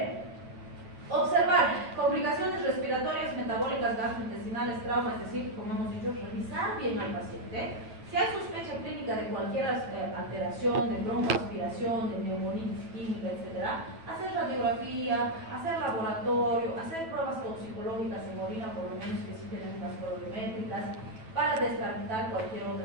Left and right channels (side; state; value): left; late; 9.1 ms